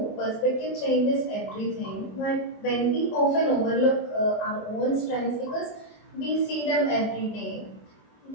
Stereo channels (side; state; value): right; late; 24 ms